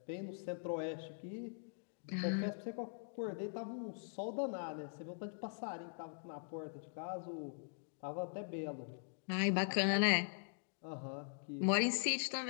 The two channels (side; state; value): right; silent; digital silence